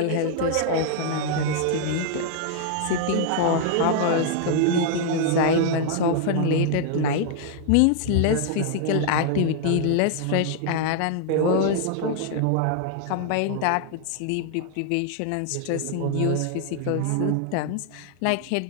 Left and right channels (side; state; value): both; different; correlation 0.00